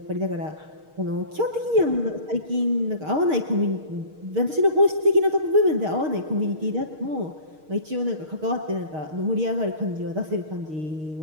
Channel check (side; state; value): left; late; 6.5 ms